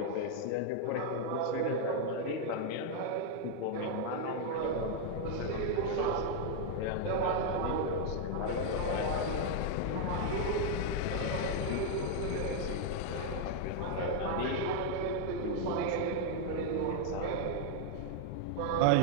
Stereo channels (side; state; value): both; different; correlation 0.00